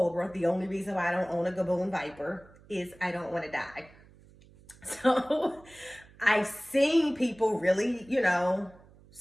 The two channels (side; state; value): right; noise; hum, 25 dB below the sound